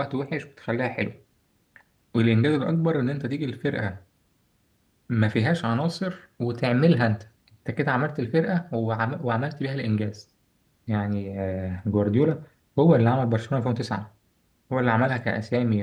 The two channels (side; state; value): both; identical; correlation 1.00